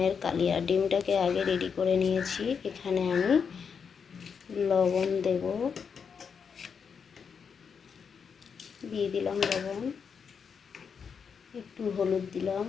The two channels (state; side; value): quieter; right; 6.4 dB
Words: কালিয়া। ডিমটাকে আগে রেডি করে নিয়েছি। এখানে আমি লবণ দেব, দিয়ে দিলাম লবণ, একটু হলুদ দিলাম।